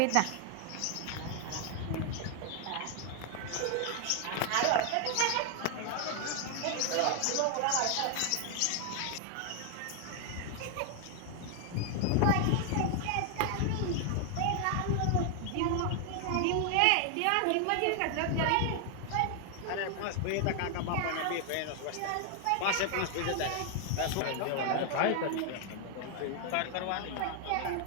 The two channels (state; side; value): different; both; correlation 0.00